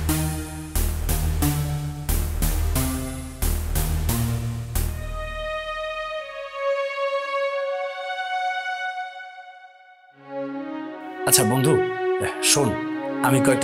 আচ্ছা বন্ধু শোন, আমি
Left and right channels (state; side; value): identical; both; correlation 1.00